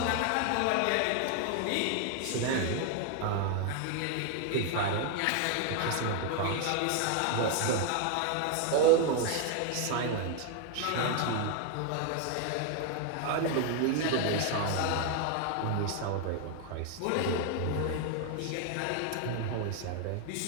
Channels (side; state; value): both; different; correlation 0.01